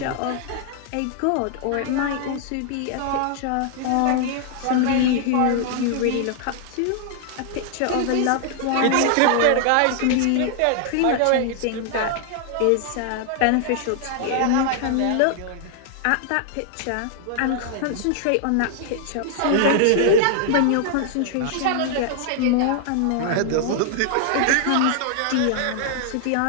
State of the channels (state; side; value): different; both; correlation 0.00